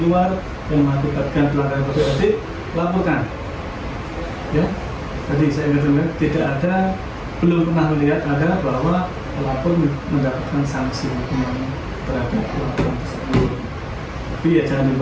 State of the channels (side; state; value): both; identical; correlation 1.00